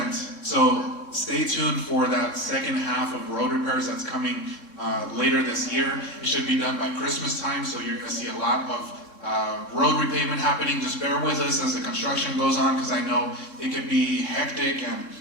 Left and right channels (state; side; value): late; right; 3.6 ms